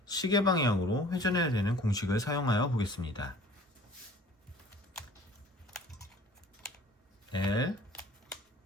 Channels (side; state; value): both; normal; correlation 0.49